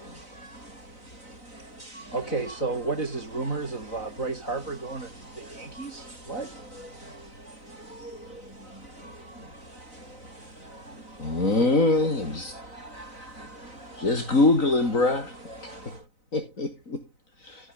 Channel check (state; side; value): late; right; 4.0 ms